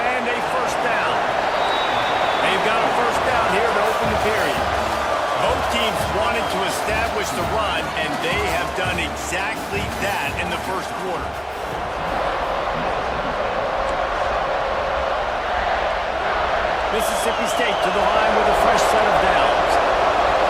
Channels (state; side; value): identical; both; correlation 1.00